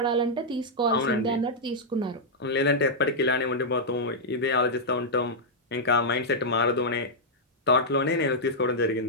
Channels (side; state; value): both; normal; correlation -0.06